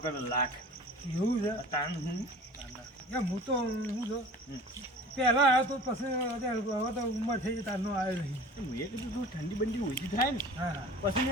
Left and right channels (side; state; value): both; normal; correlation 0.42